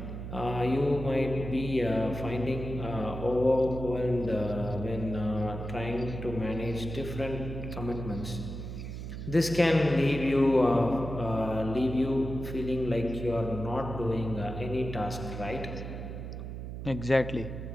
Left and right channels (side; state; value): right; noise; hum, 7 dB below the sound